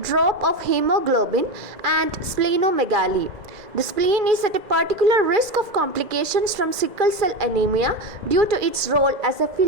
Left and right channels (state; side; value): late; left; 2.0 ms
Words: drop of hemoglobin and splenomegaly. The spleen is at a particular risk of complications from sickle cell anemia due to its role as a